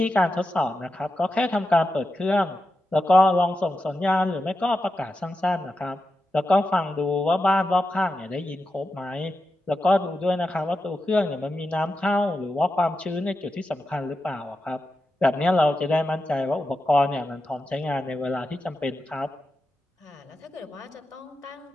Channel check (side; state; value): both; normal; correlation 0.89